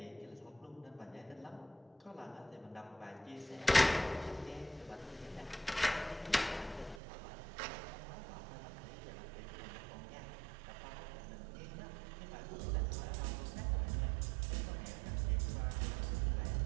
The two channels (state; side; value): drops out; left; at 7.0 s